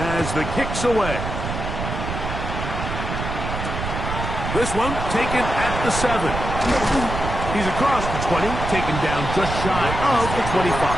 the kick's away. This one taken at the 7. He's across the 20, taken down just shy of the 25.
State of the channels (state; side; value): noise; right; rumble, 5 dB below the sound